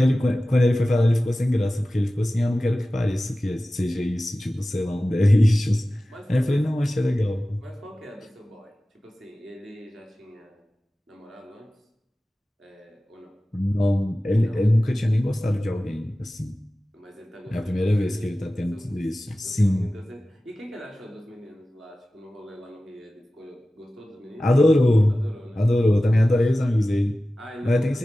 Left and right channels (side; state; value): both; normal; correlation 0.96